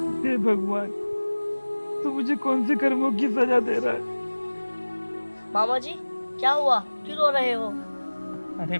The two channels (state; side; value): inverted; both; correlation -1.00